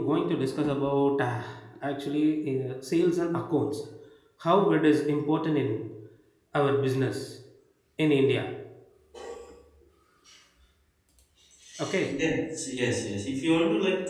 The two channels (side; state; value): both; identical; correlation 1.00